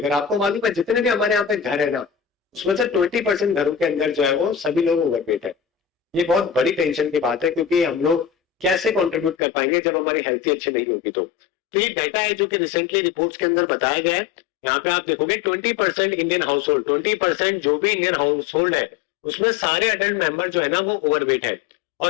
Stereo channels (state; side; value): drops out; right; at 9.3 s